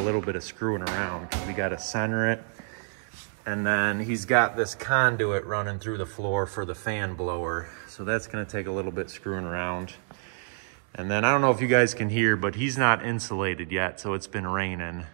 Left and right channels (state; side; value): silent; left; digital silence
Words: bit of screwing around. We gotta center it, and then he's got this conduit running through the floor for the fan blower, so that's gonna take a little bit screwing around. And then I don't know if you guys can hear, but he's not insulated yet, so it's been raining.